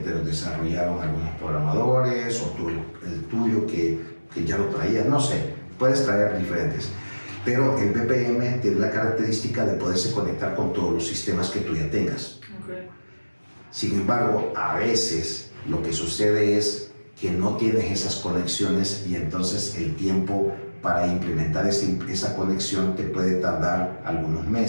los desarrollaron algunos programadores, o tú, el tuyo que ya lo traías, no sé, puedes traer diferentes. Pero el BPM tiene la característica de poderse conectar con todos los sistemas que tú ya tengas. Okay. Sin embargo, a veces lo que sucede es que no tienes esas conexiones y entonces el tiempo para implementar esa conexión te puede tardar algunos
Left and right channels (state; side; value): inverted; both; correlation -1.00